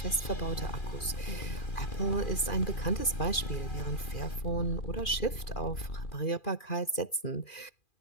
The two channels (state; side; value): late; right; 2.4 ms